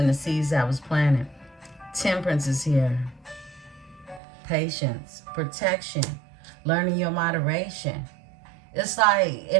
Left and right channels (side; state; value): left; drops out; at 4.2 s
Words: the seeds that was planted. Temperance is here. Patience, protection, learning your moderation. It's like